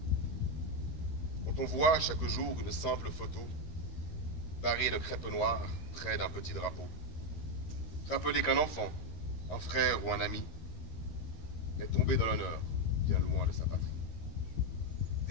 Quand on voit chaque jour une simple photo, barrée de crêpe noire près d'un petit drapeau, rappelez qu'un enfant, un frère ou un ami est tombé dans l'honneur bien loin de sa patrie.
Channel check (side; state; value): right; late; 13 ms